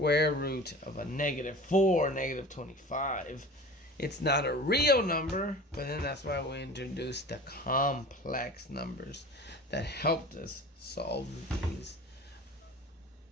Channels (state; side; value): normal; both; correlation 0.38